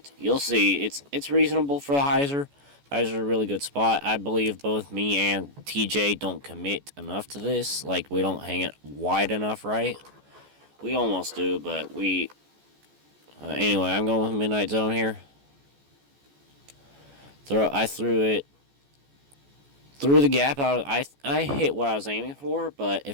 You'll see, it's reasonable for the hyzer. Hyzer's a really good spot. I believe both me and TJ don't commit enough to this. We don't hang it wide enough, right? We almost do, but we... anyway, I'm going with Midnight Zone here. I threw it through the gap. I hit what I was aiming for, but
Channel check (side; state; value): left; late; 14 ms